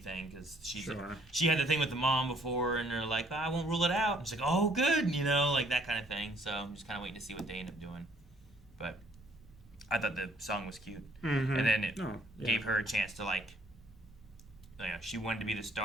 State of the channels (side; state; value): both; normal; correlation 0.63